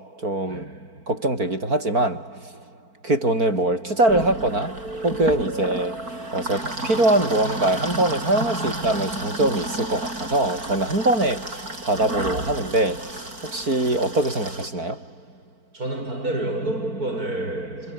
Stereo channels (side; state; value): left; late; 4.5 ms